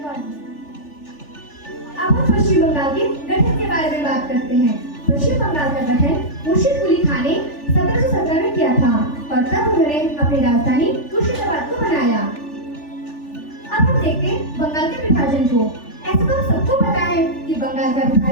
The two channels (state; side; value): late; right; 3.4 ms